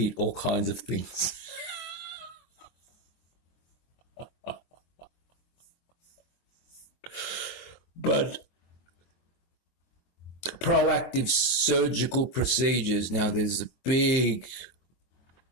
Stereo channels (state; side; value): late; right; 23 ms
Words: all kinds of things. But proactive surgical procedures, now there's a big